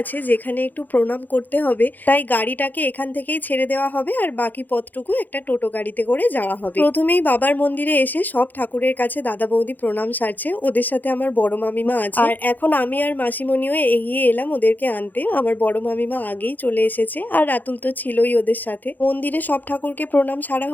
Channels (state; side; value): late; right; 0.085 ms